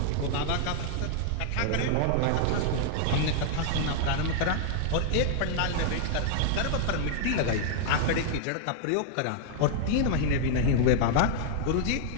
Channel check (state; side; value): different; both; correlation 0.00